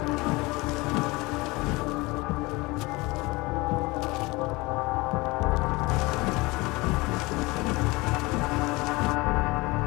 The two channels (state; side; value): quieter; right; 23.2 dB